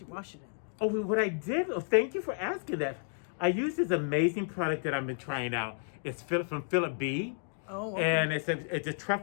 you wash it in? Oh, what I did, thank you for asking that. I used this amazing product that I've been trying out. It's from Philip B. Oh, okay. And it's a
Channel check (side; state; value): right; silent; 57 dB below the other